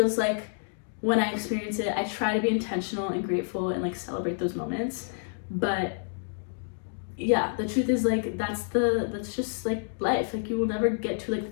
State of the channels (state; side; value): silent; right; digital silence